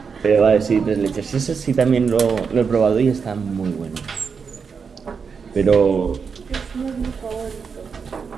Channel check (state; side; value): quieter; left; 5.8 dB